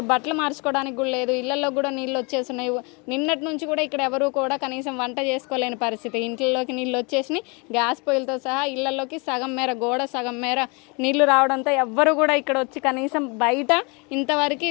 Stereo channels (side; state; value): right; quieter; 31.0 dB